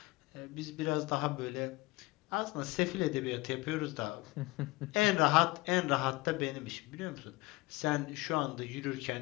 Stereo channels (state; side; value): quieter; right; 22.1 dB